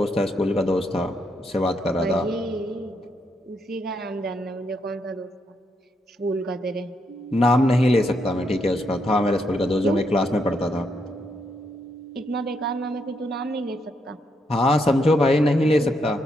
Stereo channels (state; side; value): normal; both; correlation 0.78